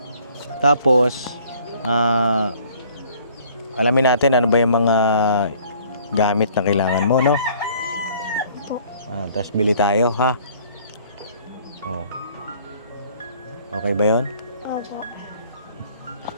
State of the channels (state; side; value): inverted; both; correlation -0.56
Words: Tapos alamin natin ano ba yung mga gamit na kailangan mo, no? Opo. Tapos bili tayo, ha? Oh. Okay ba yun? Opo.